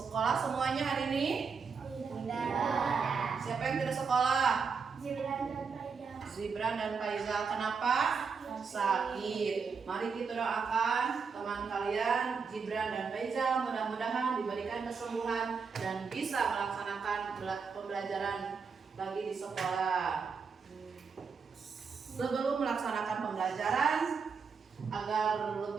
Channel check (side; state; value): left; quieter; 5.5 dB